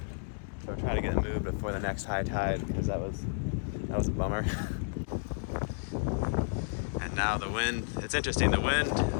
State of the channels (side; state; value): right; silent; digital silence